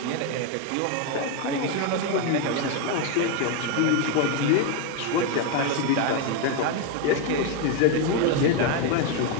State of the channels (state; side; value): different; both; correlation 0.01